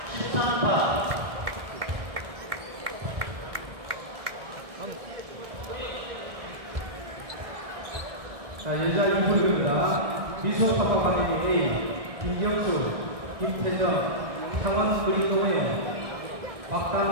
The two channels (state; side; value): late; left; 1.6 ms